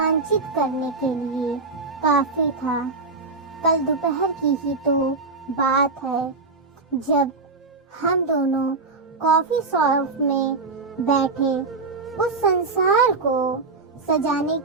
करने के लिए काफी था। कल दोपहर की ही तो बात है, जब हम दोनों कॉफी शॉप में बैठे उस संसार को सजाने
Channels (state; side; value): quieter; left; 3.9 dB